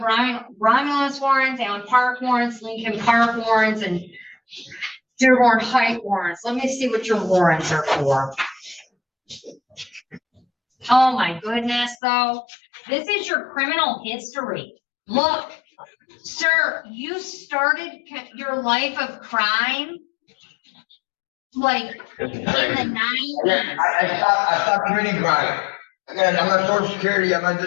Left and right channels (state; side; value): drops out; right; at 12.0 s